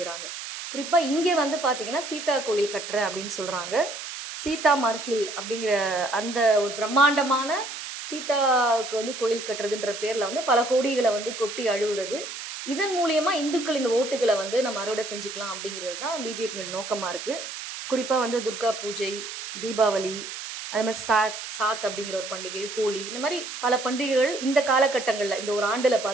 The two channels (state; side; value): noise; right; hiss, 9 dB below the sound